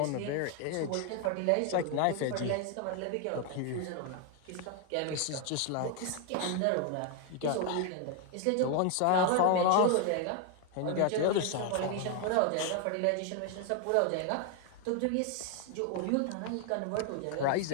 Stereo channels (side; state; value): both; different; correlation 0.00